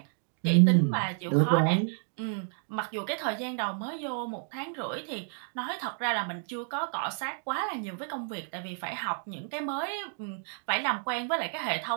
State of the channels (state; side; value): silent; left; digital silence